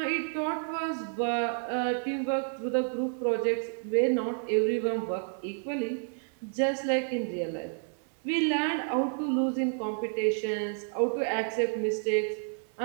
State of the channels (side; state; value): left; silent; 58 dB below the other